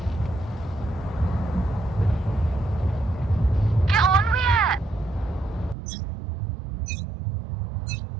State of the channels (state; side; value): drops out; left; at 5.8 s